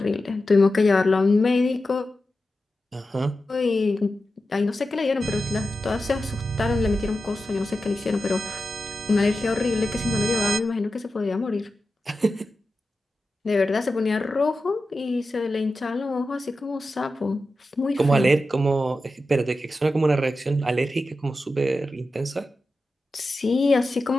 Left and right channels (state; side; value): normal; both; correlation 0.92